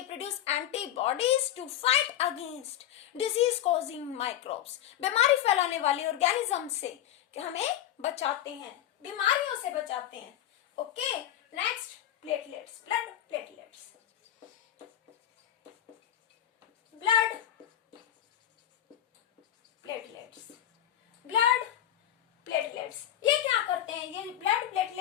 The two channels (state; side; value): quieter; right; 11.9 dB